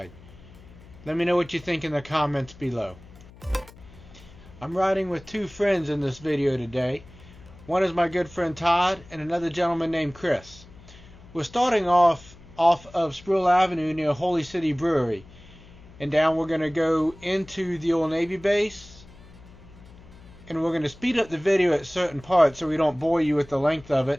Let me know what you think in the comments below. I'm riding with two friends in this video today. One is my good friend Todd and another gentleman named Chris. We're starting off of Sproul Avenue near Holy City Brewery, and down we're going to go into the old Navy base, and we're going to speed up the video at certain parts so we don't bore you with the length of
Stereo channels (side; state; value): left; noise; hum, 21 dB below the sound